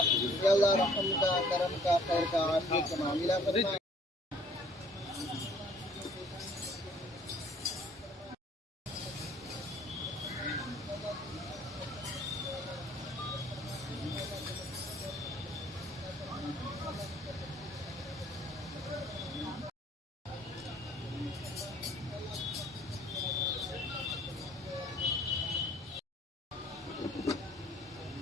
या अल्लाह रहम का, करम का, खैर का, आफियत का मामला फरमा।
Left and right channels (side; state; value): both; normal; correlation 0.57